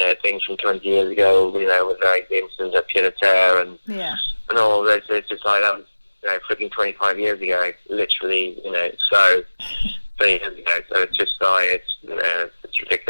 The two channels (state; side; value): inverted; both; correlation -1.00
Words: things from 20 years ago, with like the instance of pied à terre and all this. It's just like that was freaking 25 years ago, literally, so 20 years ago. So it's just like it's